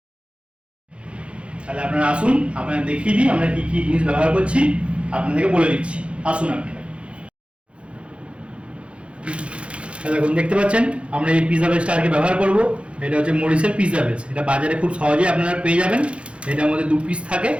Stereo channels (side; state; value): left; late; 0.060 ms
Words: তাহলে আপনারা আসুন, আপনারা দেখিয়ে দিই আমরা কি কি জিনিস ব্যবহার করছি, আপনাদেরকে বলে দিচ্ছি। আসুন আপনারা। দেখুন, দেখতে পাচ্ছেন আমরা এই পিৎজা বেসটা আজকে ব্যবহার করব। এটা হচ্ছে মরিসের পিৎজা বেস। এটা বাজারে খুব সহজেই আপনারা পেয়ে যাবেন। এটার মধ্যে 2 পিস থাকে।